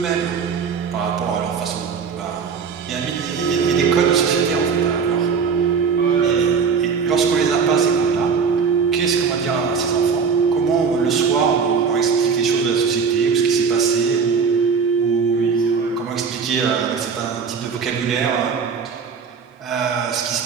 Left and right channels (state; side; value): quieter; left; 5.9 dB